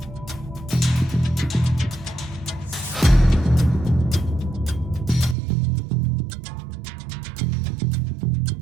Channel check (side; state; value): left; drops out; at 5.4 s